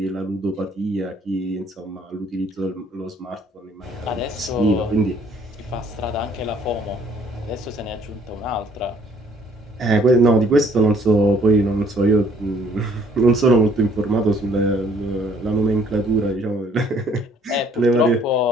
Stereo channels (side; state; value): both; normal; correlation 0.61